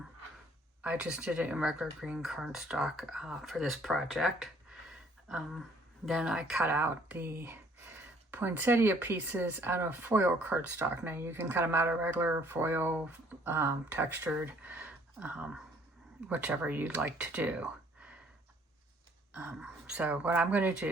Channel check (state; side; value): normal; both; correlation 0.60